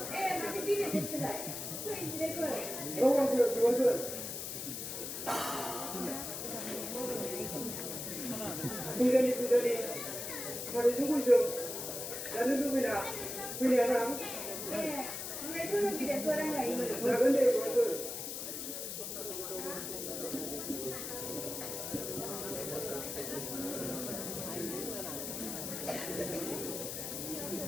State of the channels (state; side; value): noise; left; hiss, 5 dB below the sound